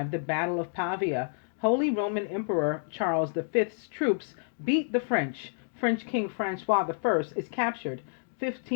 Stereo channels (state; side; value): silent; right; digital silence